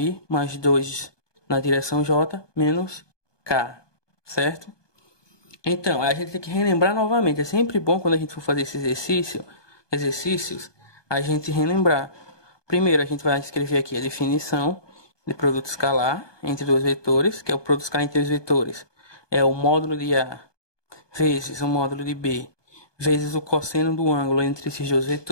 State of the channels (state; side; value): late; right; 1.2 ms